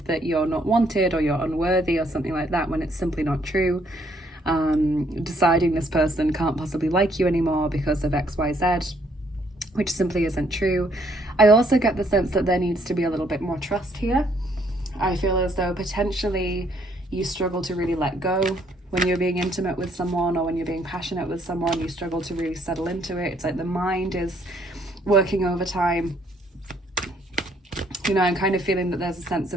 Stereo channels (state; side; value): normal; both; correlation 0.68